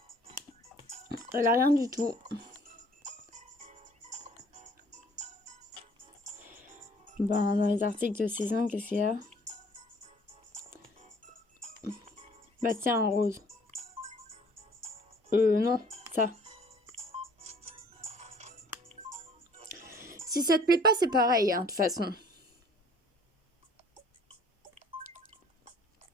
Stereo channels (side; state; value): both; normal; correlation 0.55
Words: Elle a rien du tout. Ben, dans les articles de saison, qu'est-ce qu'il y a? Bah tiens, un rose. Non, ça. Si ça te plaît pas, c'est pareil, hein, de toute façon.